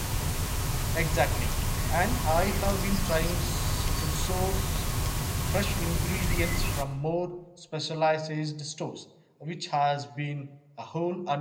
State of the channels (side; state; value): both; identical; correlation 1.00